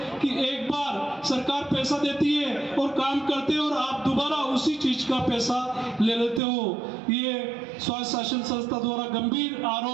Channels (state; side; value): drops out; left; at 6.4 s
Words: कि एक बार सरकार पैसा देती है और काम करते हैं और आप दोबारा उसी चीज का पैसा ले लेते हो। ये स्वास्थ्य शासन संस्था द्वारा गंभीर